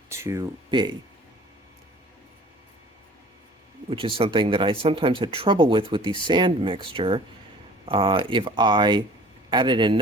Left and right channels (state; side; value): normal; both; correlation 0.47